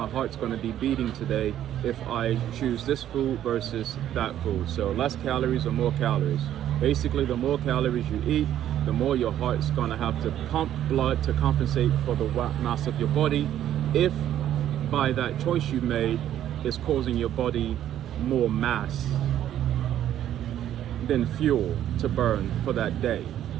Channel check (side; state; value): left; quieter; 11.4 dB